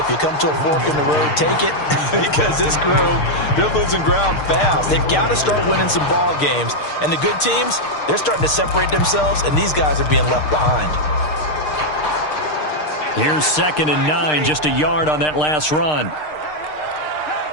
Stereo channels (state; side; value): late; right; 6.6 ms